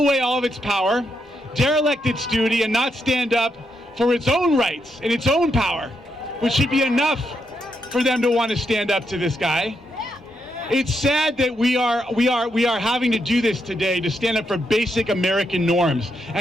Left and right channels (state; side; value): normal; both; correlation 0.81